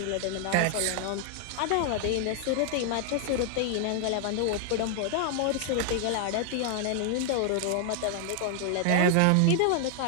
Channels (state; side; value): different; both; correlation 0.00